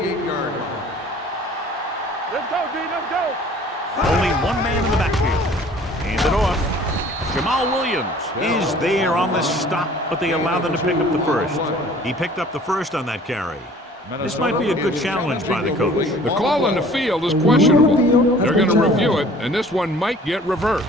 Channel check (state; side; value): normal; both; correlation 0.51